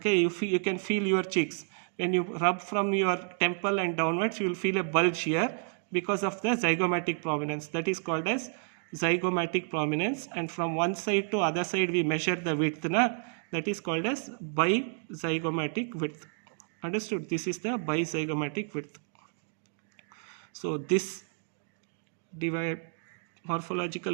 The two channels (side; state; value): left; silent; 58 dB below the other